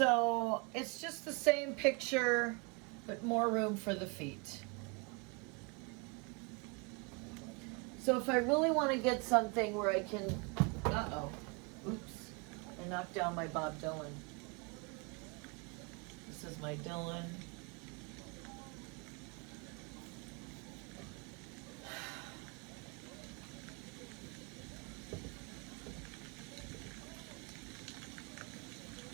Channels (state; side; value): quieter; left; 30.0 dB